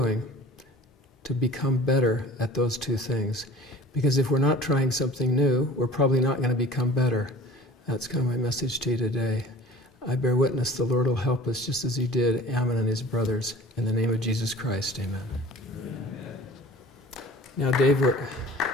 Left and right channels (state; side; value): normal; both; correlation 0.44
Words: to become better at those two things? Because if we're not trying something new, we're probably not going to become better. That's kind of my message to you today. I bear witness the Lord will help us just as he did Ammon and his brothers. In the name of Jesus Christ, amen. Now, Dave,